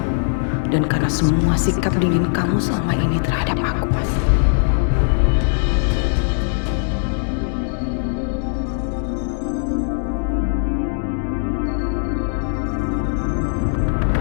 dan karena semua sikap dingin kamu selama ini terhadap aku, Mas.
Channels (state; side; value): silent; right; digital silence